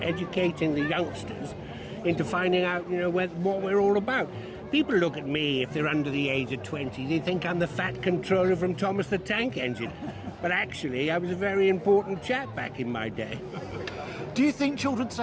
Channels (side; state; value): both; identical; correlation 1.00